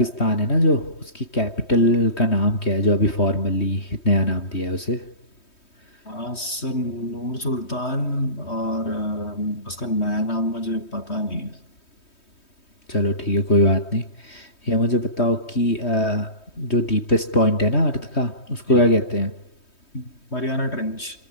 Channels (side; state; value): right; late; 3.2 ms